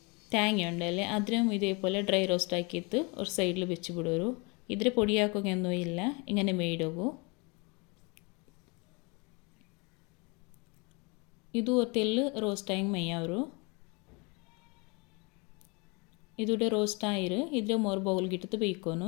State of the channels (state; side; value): quieter; right; 29.5 dB